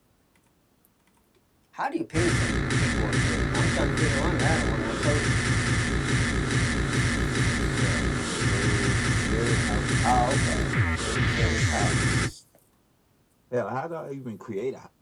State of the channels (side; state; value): both; identical; correlation 1.00